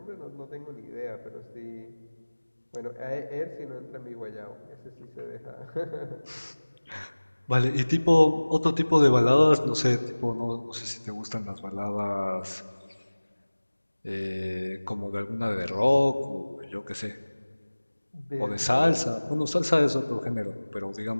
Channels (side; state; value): both; inverted; correlation -1.00